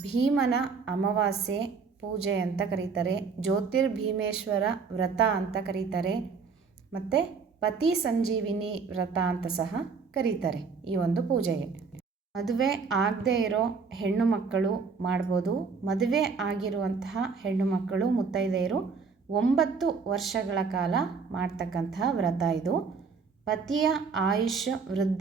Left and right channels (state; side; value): quieter; left; 5.1 dB